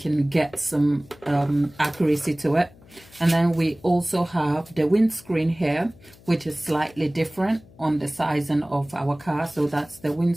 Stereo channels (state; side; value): noise; left; hum, 25 dB below the sound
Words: get some accuracy to it. And then we also have the windscreen here, which is slightly different on the sizing of our car. So that's the